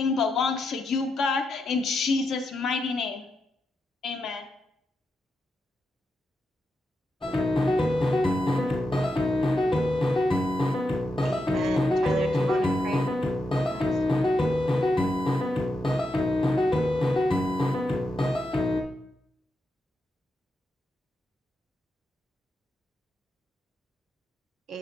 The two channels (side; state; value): both; normal; correlation 0.86